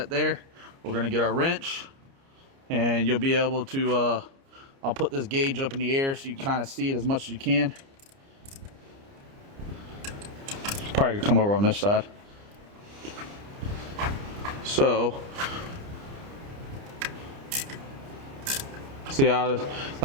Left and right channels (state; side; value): late; left; 29 ms